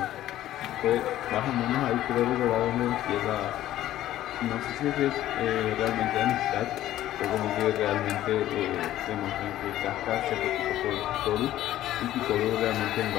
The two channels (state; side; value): quieter; right; 13.5 dB